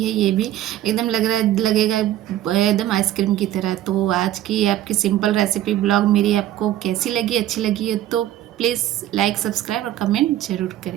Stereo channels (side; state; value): left; quieter; 13.0 dB